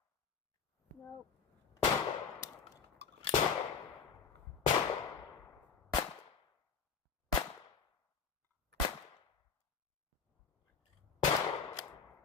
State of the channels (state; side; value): quieter; right; 5.9 dB